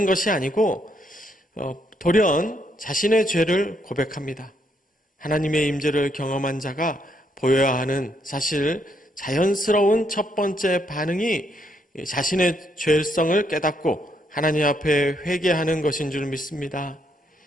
것이 아니고 돌연 자신의 죄를 고백합니다. 하나님의 임재를 경험한 자가 보여야 하는 사실 자연스러운 첫 번째 반응이 자신의 죄성을 깨닫고 하나님 앞에 회개하는 것인 줄 믿습니다.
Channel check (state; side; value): normal; both; correlation 0.74